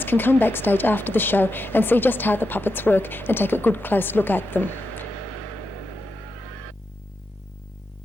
can come backstage after the show and see just how the puppets work and take a good close look at them.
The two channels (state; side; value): normal; both; correlation 0.86